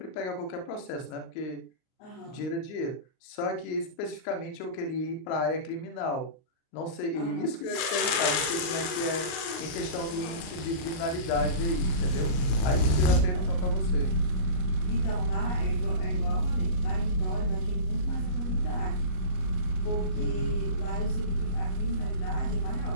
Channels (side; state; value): right; late; 39 ms